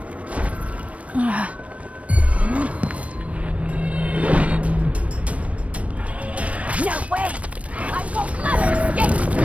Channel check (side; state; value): left; late; 0.065 ms